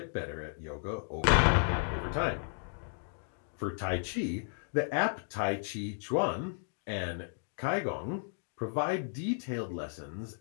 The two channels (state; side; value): silent; right; digital silence